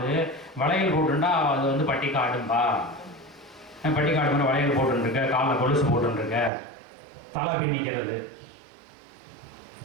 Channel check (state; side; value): drops out; left; at 6.5 s